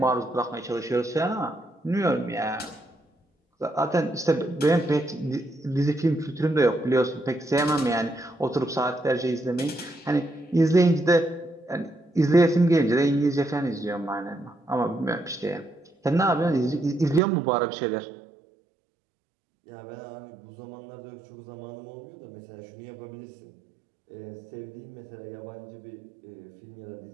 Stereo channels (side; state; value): left; drops out; at 17.2 s